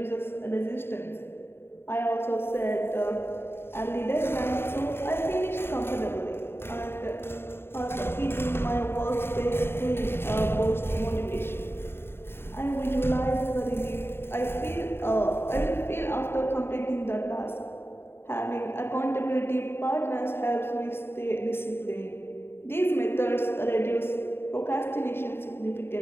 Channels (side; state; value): right; late; 0.11 ms